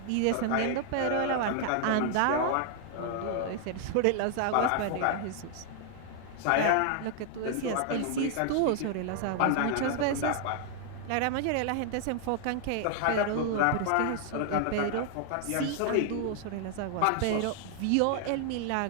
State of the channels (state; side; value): different; both; correlation 0.00